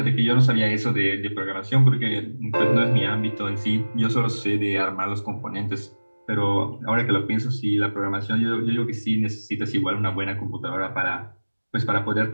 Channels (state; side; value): inverted; both; correlation -1.00